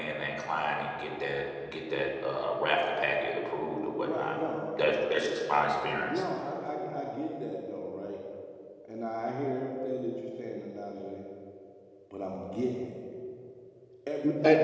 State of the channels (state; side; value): identical; both; correlation 1.00